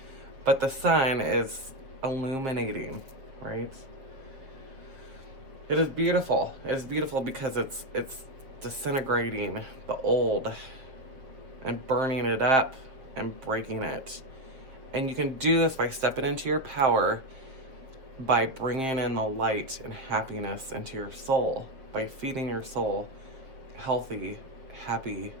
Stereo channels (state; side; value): late; left; 7.3 ms